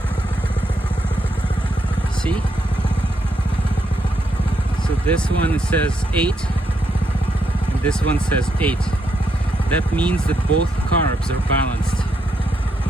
See? So this one says 8, and this one says 8. That means that both carbs are balanced.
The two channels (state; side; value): normal; both; correlation 0.79